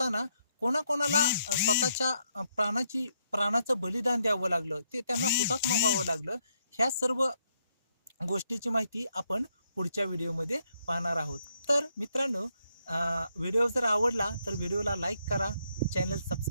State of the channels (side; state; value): both; inverted; correlation -0.76